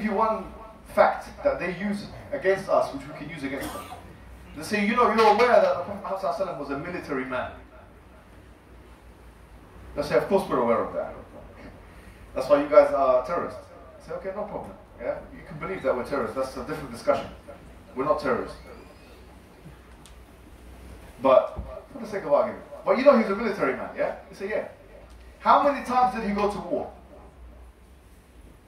you one fact that they use against us, which we can use against them. They say, you know, you're aware that the Prophet ﷺ was a military man. They say, of course we're aware of that. That's why you guys are terrorists. I say, okay, no problem. Yeah, you can believe that we're terrorists. That's a different discussion. We're not terrorists. But for the sake of argument, But you know he's a military man, yeah? You say, yeah. How many times did he go to war?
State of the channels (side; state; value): both; identical; correlation 1.00